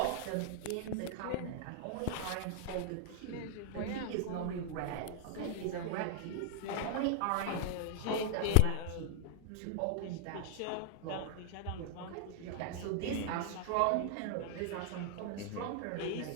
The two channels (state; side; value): different; both; correlation 0.00